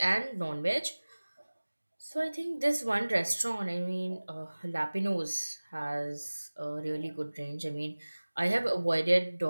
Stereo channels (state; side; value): inverted; both; correlation -1.00